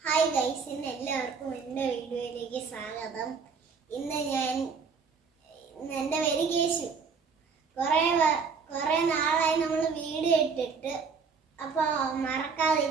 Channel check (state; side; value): quieter; left; 5.4 dB